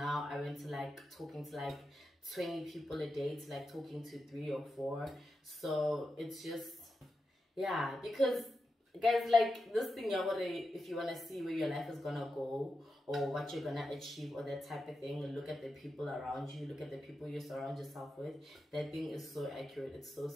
I went to like talking to like 20 people a day to like talking to 3 or 4. So it's just, yeah, because guys, like this thing, if you want to see where your life is gonna go or what you're gonna achieve or that type of thing, look at the people around you, look at the people you surround yourself with. That thing is so accurate, it's so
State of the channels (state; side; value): normal; both; correlation 0.89